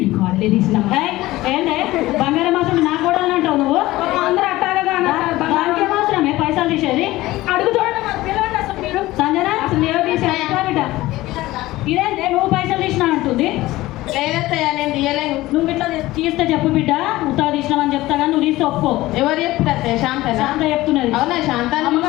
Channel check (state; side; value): quieter; right; 17.7 dB